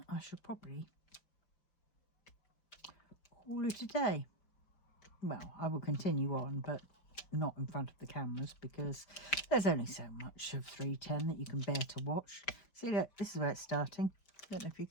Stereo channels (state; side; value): late; right; 5.2 ms